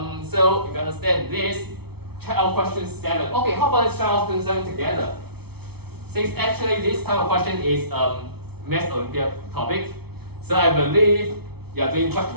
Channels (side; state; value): left; late; 0.97 ms